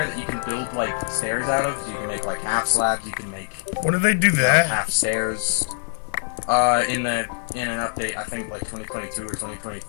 that you can build like stairs out of. You can make like half slabs. You can make When did they do that? half stairs. In an update, I think like 2022 or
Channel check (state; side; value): silent; right; digital silence